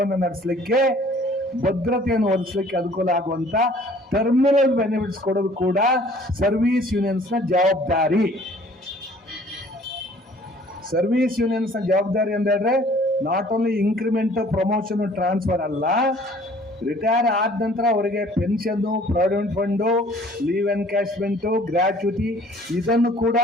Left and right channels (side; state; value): both; normal; correlation 0.54